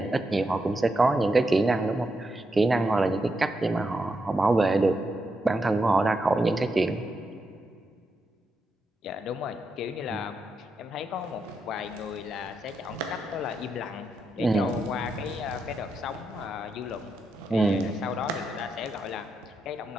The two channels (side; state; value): both; normal; correlation 0.84